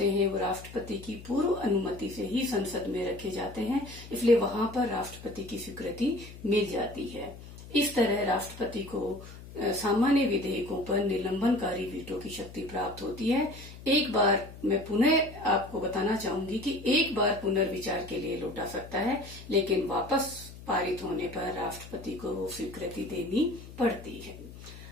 हैं वो राष्ट्रपति की पूर्व अनुमति से ही संसद में रखे जाते हैं, इसलिए वहां पर राष्ट्रपति की स्वीकृति मिल जाती है। इस तरह राष्ट्रपति को सामान्य विधेयकों पर निलंबनकारी वीटो की शक्ति प्राप्त होती है। एक बार मैं पुनः आपको बताना चाहूंगी कि एक बार पुनर्विचार के लिए लौटा सकता है, लेकिन वापस पारित होने पर राष्ट्रपति को वो स्वीकृति देनी पड़ती है।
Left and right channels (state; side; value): noise; left; hum, 16 dB below the sound